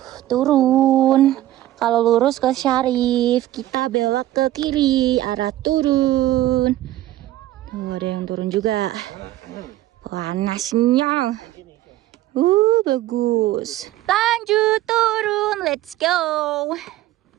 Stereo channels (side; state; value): left; quieter; 14.8 dB